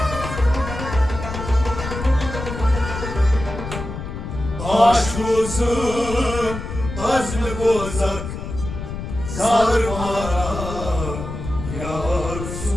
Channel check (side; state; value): left; noise; rumble, 7 dB below the sound